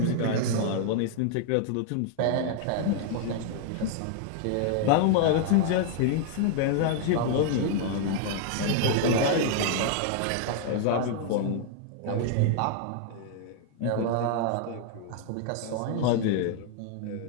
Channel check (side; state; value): both; different; correlation 0.00